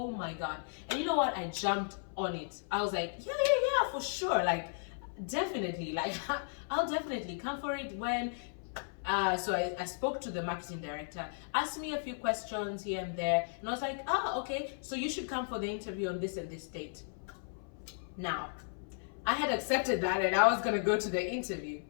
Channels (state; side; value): silent; right; 54 dB below the other